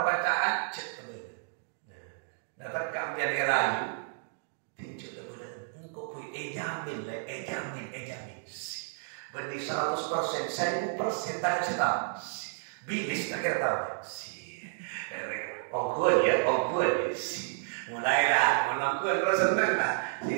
cek bener. Nah, dapat kami rayu, tinjau bener. Engkau pun jamin. Benih 100%, 1000% tak cerita. Bilis tak kira tahu. Ongkul ya. Mulailah, menangkul terus senang lah.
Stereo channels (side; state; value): left; silent; digital silence